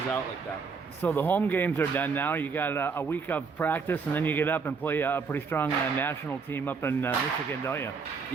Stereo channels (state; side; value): quieter; left; 5.3 dB